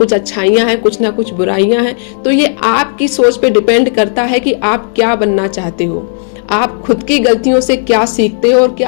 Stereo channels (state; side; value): silent; right; digital silence